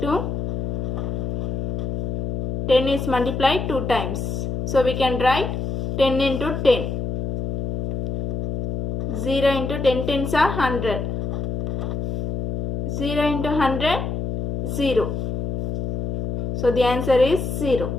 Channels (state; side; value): noise; left; hum, 3 dB below the sound